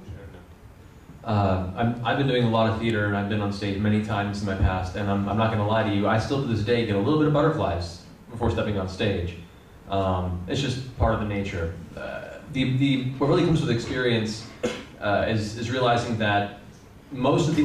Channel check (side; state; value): both; identical; correlation 1.00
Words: I've been doing a lot of theater, and I've been on stage many times in my past, and I'm not going to lie to you, I still to this day get a little bit of butterflies before stepping on stage. It's just part of the nature. What really comes with experience is realizing that most of the